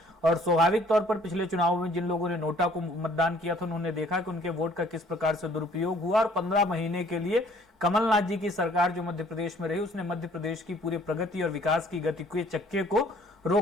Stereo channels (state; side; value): normal; both; correlation 0.58